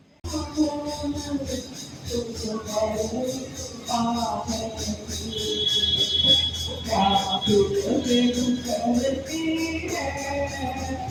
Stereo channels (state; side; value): identical; both; correlation 1.00